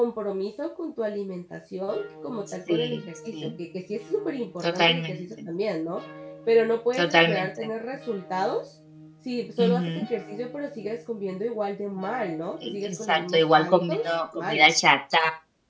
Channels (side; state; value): both; identical; correlation 1.00